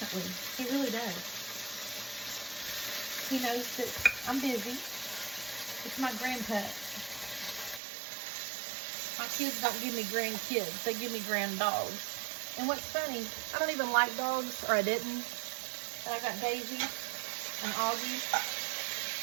He really does. He knows that I'm busy. It's my grandpa. My kids don't give me grandkids. They give me grand dogs. And what's funny, I don't even like dogs, or I didn't. But I got Daisy and Augie.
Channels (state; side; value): drops out; left; at 7.8 s